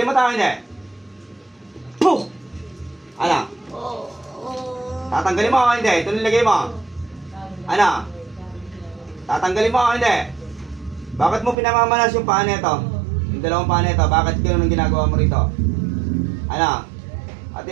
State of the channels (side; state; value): left; drops out; at 11.6 s